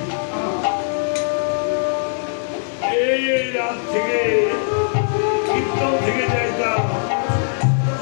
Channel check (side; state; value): right; silent; 66 dB below the other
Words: এই রাত থেকে কীর্তন থেকে যাইতাম